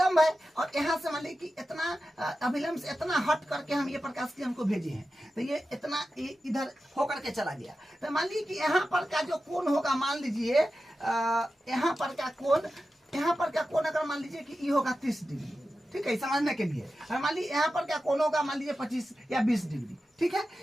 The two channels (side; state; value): both; normal; correlation 0.92